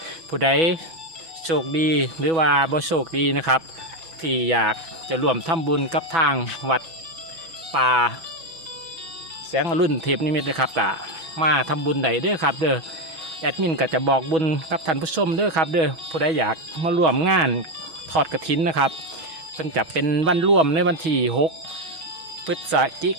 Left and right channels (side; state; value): left; late; 6.1 ms